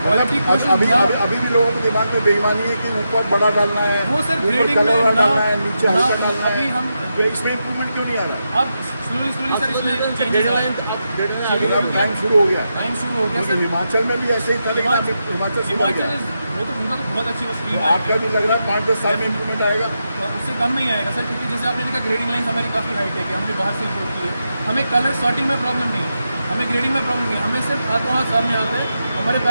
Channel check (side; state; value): both; inverted; correlation -0.86